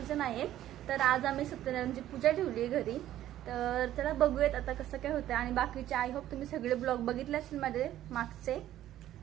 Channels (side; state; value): left; quieter; 12.9 dB